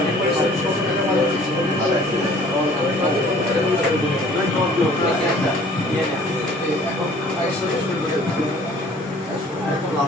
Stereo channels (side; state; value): both; normal; correlation 0.53